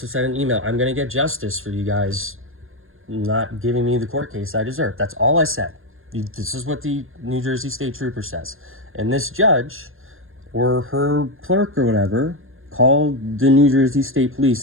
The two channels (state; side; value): late; left; 0.60 ms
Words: sent an email. I'm going to get justice for you guys not giving me the court case I deserve. That's all I said. This is what the New Jersey State Trooper says. And this judge, or her clerk or whatever, called the New Jersey State Police